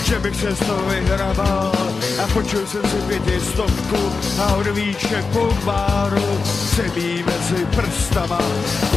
že bych se z toho vyhrabal. A počul jsem si 500 a od výček po báru se mý mezi prstama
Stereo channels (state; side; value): quieter; right; 4.5 dB